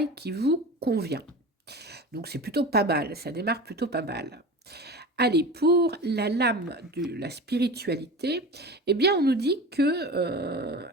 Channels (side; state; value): both; normal; correlation 0.32